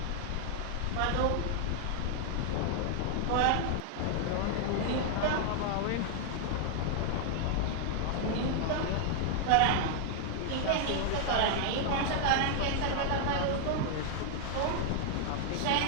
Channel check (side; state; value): both; different; correlation 0.00